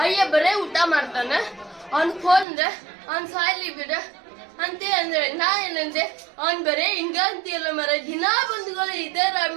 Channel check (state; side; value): drops out; left; at 2.5 s